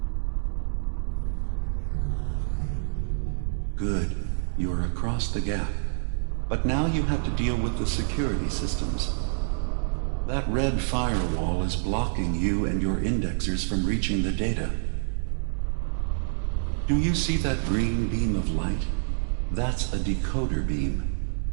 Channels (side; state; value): left; silent; 60 dB below the other